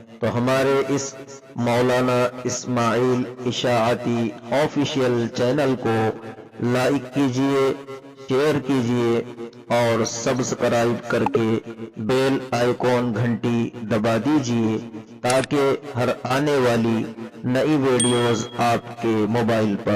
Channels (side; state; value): both; identical; correlation 1.00